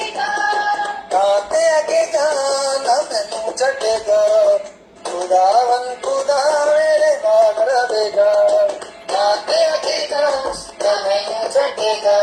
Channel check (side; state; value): both; identical; correlation 1.00